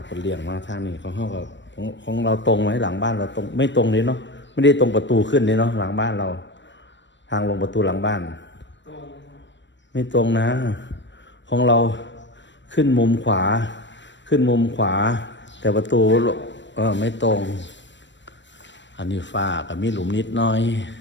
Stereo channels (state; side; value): late; right; 0.53 ms